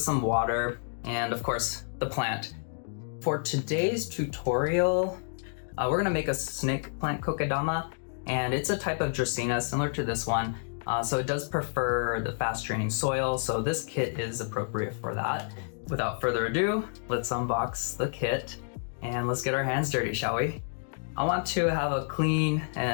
some water and of course the plant. For today's tutorial, we're gonna make a snake plant kokedama, and it's a type of dracaena similar to this one. So it does prefer the fast draining soil, so this kit is appropriate for that. Without further ado, let's unbox the kit and let's get our hands dirty, shall we? I want to have a clean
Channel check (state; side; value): silent; right; digital silence